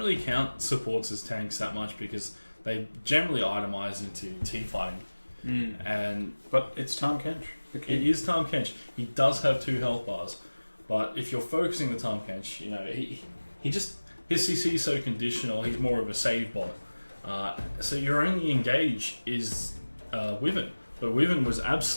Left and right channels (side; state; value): both; inverted; correlation -1.00